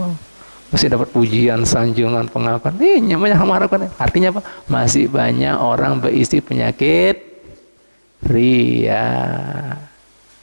masih dapat pujian, sanjungan, pengakuan. Ini banyak mengharapkan. Artinya apa? Masih banyak orang berisi penyakit ria.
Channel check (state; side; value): inverted; both; correlation -1.00